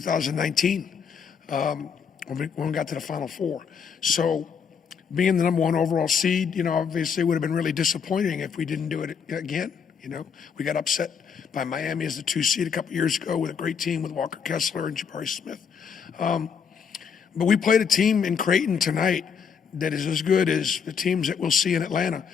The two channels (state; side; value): quieter; right; 6.7 dB